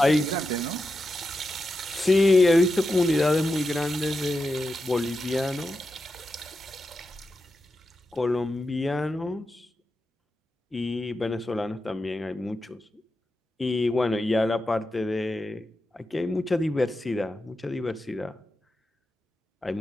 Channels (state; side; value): normal; both; correlation 0.89